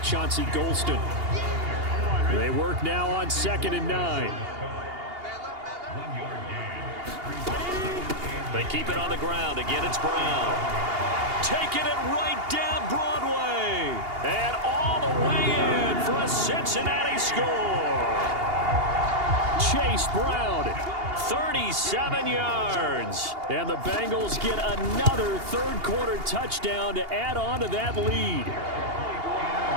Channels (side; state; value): left; late; 2.8 ms